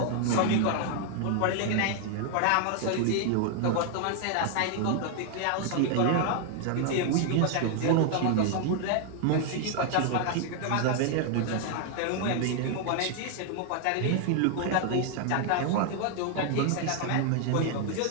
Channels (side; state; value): both; different; correlation 0.00